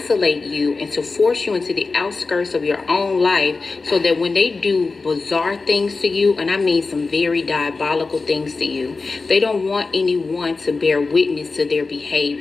you and to force you into the outskirts of your own life so that when they do bizarre things to you, and I mean some very diabolical things to you, they don't want anyone to bear witness to their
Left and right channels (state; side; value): quieter; right; 4.0 dB